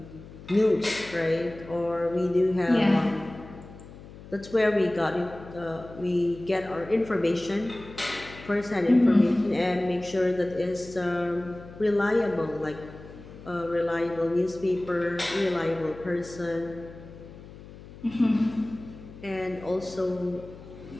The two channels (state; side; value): noise; left; hum, 17 dB below the sound